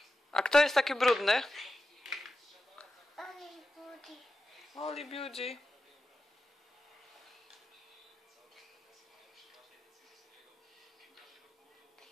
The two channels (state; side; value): normal; both; correlation 0.91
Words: A kto jest taki brudny? Only booty. Oli Beauty.